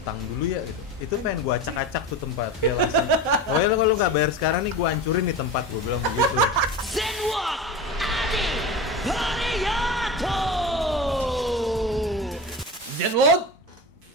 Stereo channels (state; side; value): normal; both; correlation 0.27